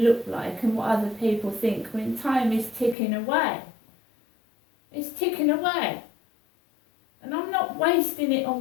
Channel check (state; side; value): drops out; right; at 3.0 s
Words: like and what other people think when time is ticking away? It's ticking away. And I'm not wasting it